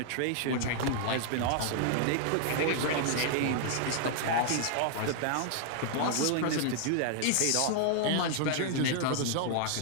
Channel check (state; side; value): different; both; correlation -0.01